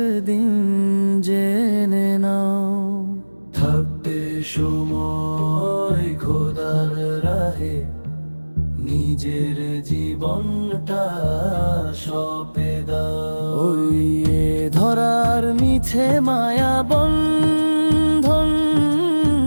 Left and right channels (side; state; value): both; inverted; correlation -1.00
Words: জেনে নাও। থাকতে সময় খোদার রাহে নিজের জীবনটা সঁপে দাও। ওই এ ধরার মিছে মায়া বন্ধন,